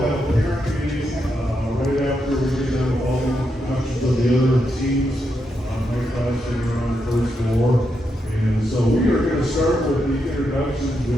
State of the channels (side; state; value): both; normal; correlation 0.83